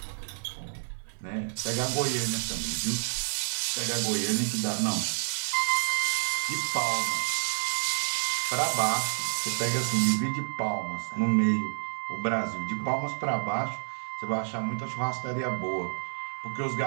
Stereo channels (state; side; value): silent; left; digital silence